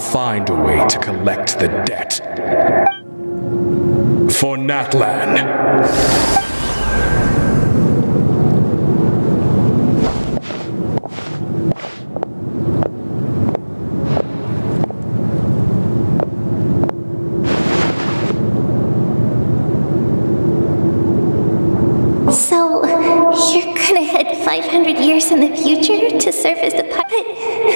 find a way to collect the debt. For NATLAN. So, you're gonna head 500 years in the future to serve as the puppet?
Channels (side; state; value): both; inverted; correlation -1.00